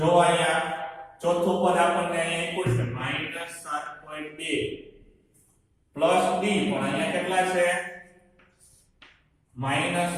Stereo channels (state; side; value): identical; both; correlation 1.00